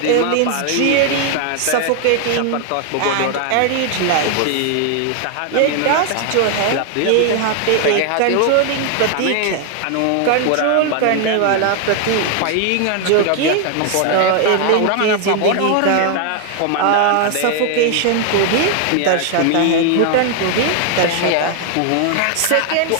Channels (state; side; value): different; both; correlation 0.00